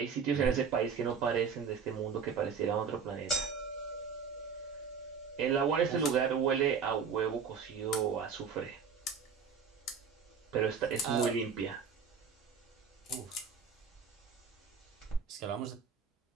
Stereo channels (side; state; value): left; quieter; 6.2 dB